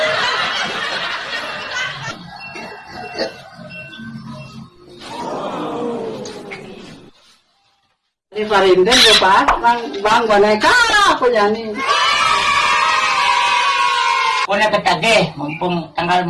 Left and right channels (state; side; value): identical; both; correlation 1.00